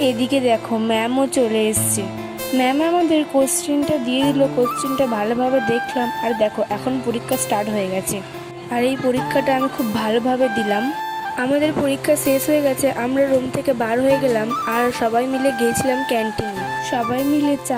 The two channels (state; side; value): identical; both; correlation 1.00